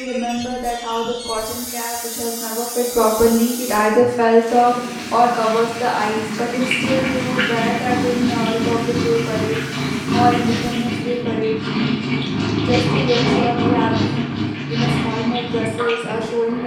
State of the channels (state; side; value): identical; both; correlation 1.00